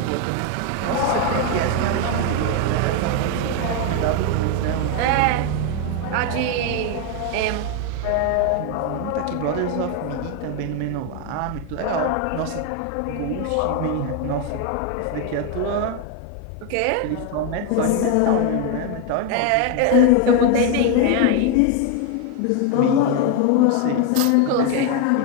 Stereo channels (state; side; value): different; both; correlation 0.01